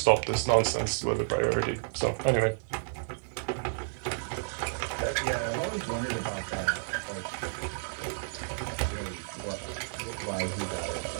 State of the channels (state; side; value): silent; left; 57 dB below the other